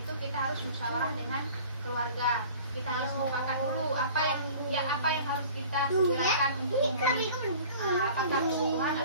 kita harus musyawarah dengan keluarga. Kita harus mufakat dulu apa yang harus kita segerakan untuk memenuhi, apakah kebutuhan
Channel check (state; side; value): inverted; both; correlation -0.45